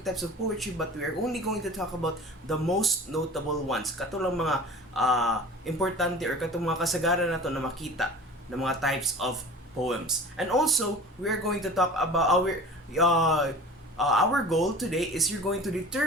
types of poetry, but we are only going to talk about the most notable ones. Katulang mga importante or katong mga kasagaran na to na makita ng mga types of poems. And also, we are going to talk about our goal today is you're going to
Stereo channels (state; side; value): normal; both; correlation 0.40